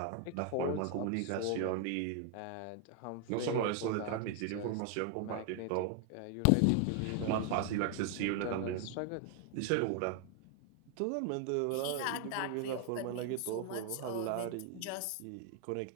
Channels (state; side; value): different; both; correlation 0.00